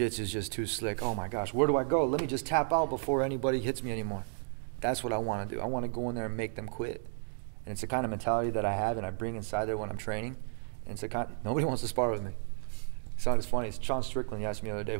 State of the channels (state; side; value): silent; left; digital silence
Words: is just too slick. Oh, my gosh, where do I go? Let me just tap out before anybody hits me anymore. That's what I want to do. I want to go in there and make them quit. And it's the kind of mentality that I have and I bring inside there when I'm training. And it's the kind, nobody wants to spar with me. So it's funny. It's Sean Strickland. He asked me the other day,